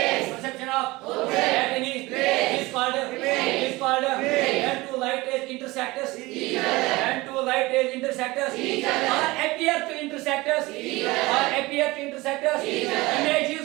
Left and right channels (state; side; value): quieter; left; 21.2 dB